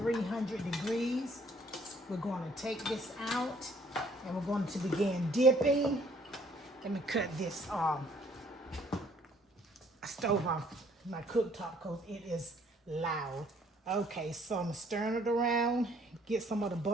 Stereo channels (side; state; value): both; normal; correlation 0.62